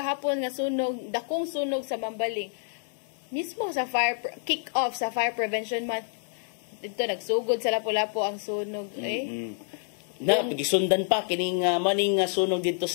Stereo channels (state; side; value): silent; right; 55 dB below the other